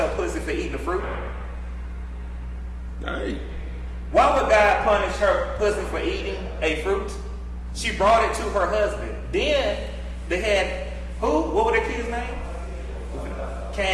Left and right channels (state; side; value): identical; both; correlation 1.00